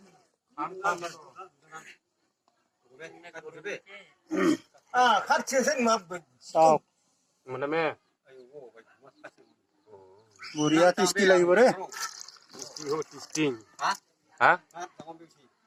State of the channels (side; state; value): both; identical; correlation 1.00